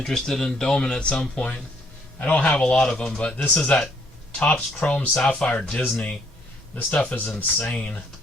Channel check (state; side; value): normal; both; correlation 0.67